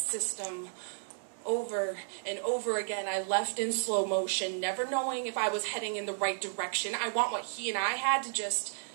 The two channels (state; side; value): silent; left; 55 dB below the other